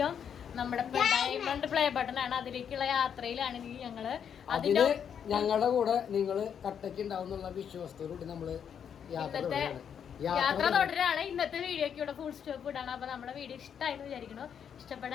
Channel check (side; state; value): right; quieter; 8.0 dB